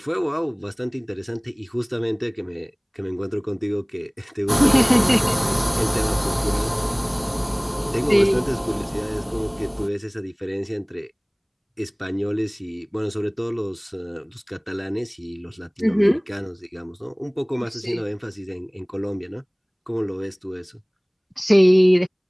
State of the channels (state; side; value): identical; both; correlation 1.00